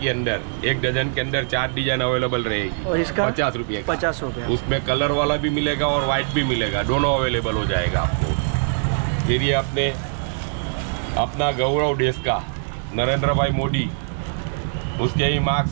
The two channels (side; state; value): left; silent; 61 dB below the other